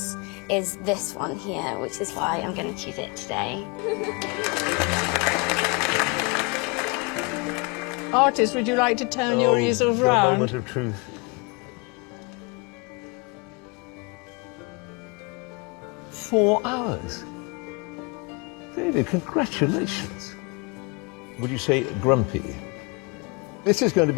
is this one here, which is why I'm going to choose it today. Artists, would you like to turn your easels round? The moment of truth. "4 hours. David, congratulations. Would you say grumpy? This is going to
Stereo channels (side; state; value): right; quieter; 29.6 dB